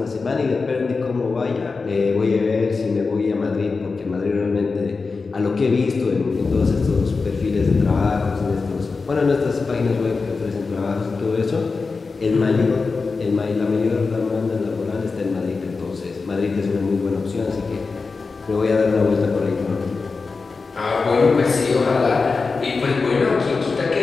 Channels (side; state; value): right; quieter; 4.4 dB